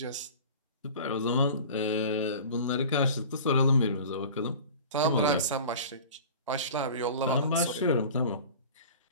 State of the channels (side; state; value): both; inverted; correlation -0.39